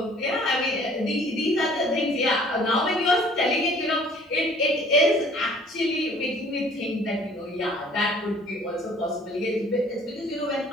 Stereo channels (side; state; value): both; normal; correlation 0.54